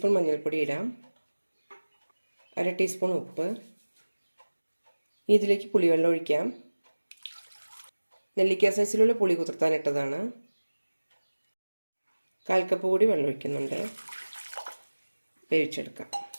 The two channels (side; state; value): both; inverted; correlation -1.00